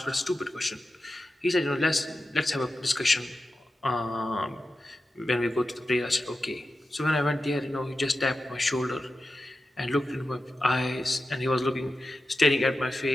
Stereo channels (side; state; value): both; normal; correlation 0.92